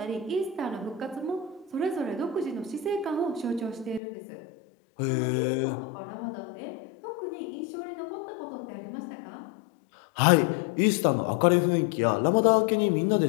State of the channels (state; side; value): drops out; right; at 4.0 s